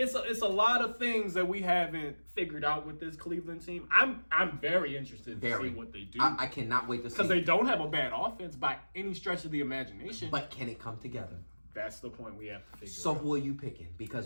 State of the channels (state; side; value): inverted; both; correlation -1.00